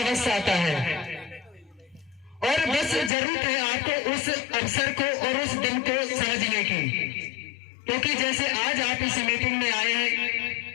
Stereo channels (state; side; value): drops out; right; at 3.1 s